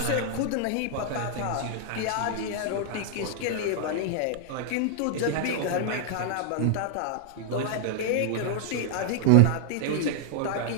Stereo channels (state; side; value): different; both; correlation -0.01